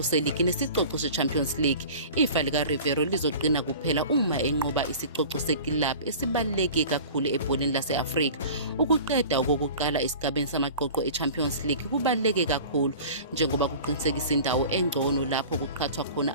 seligi nesicoco se-Champions League. Ifa lika Riveiro lizoqina kuphela uma enqoba isicoco sekilab esibaluleke kakhulu ebholeni lase-Afrika. Ukuqeda okokuqala esigabeni samaqoqo e-Champions League kubaluleke kakhulu njengoba kuqinisekisa indawo engcono lapho kuqhathwa khona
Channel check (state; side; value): inverted; both; correlation -0.40